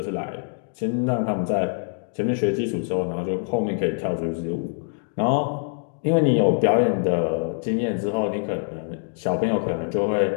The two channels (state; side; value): silent; right; 62 dB below the other